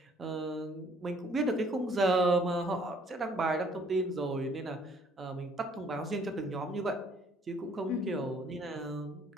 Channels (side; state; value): both; normal; correlation 0.61